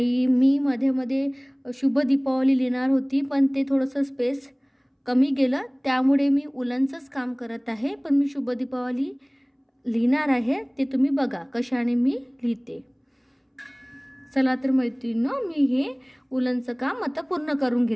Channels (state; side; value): identical; both; correlation 1.00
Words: मी मध्ये मध्ये शुभ दीपावली लिहिणार होती, पण ते थोडंसं स्पेस कमी गेलं, त्यामुळे मी उलनचंच काम करत आहे। पण मी शुभ दीपावली लिहिणार आहे, ते तुम्ही बघा कशाने मी लिहिते। चला तर मैत्रिणींनो, मी हे उलनचं काम आता पूर्ण करून